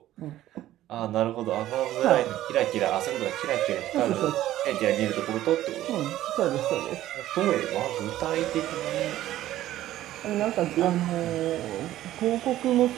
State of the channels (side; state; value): left; quieter; 13.9 dB